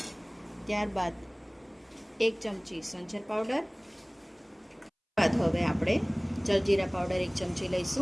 ત્યારબાદ 1 ચમચી સંચર પાવડર। બાદ હવે આપણે જલજીરા પાવડર 1 ચમચી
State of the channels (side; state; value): both; identical; correlation 1.00